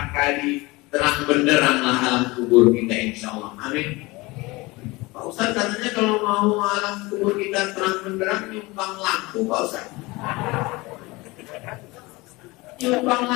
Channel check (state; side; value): quieter; right; 22.8 dB